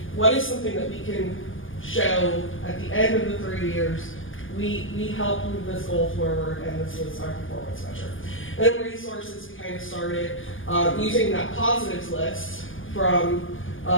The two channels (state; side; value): late; right; 0.58 ms